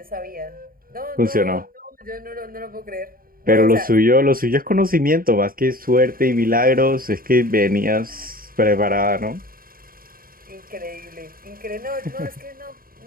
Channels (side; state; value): left; late; 0.42 ms